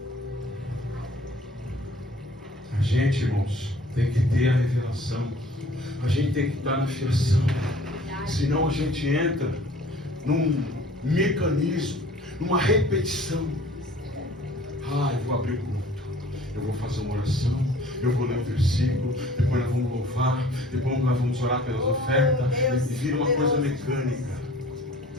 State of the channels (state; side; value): normal; both; correlation 0.50